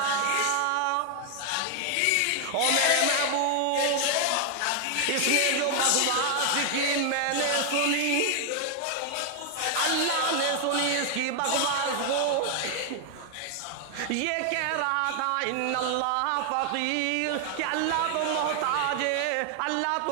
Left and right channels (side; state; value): both; different; correlation 0.00